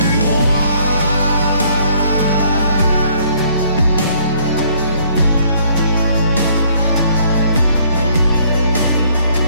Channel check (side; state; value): both; inverted; correlation -0.63